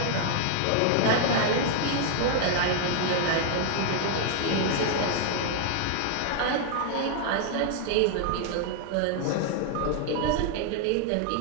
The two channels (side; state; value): both; different; correlation 0.00